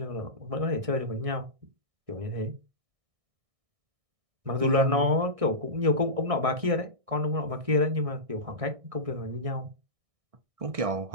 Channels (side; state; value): left; late; 1.6 ms